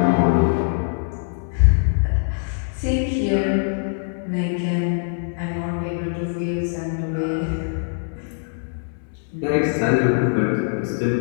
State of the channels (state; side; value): silent; right; digital silence